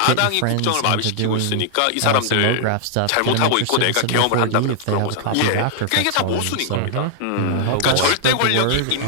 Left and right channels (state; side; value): different; both; correlation -0.01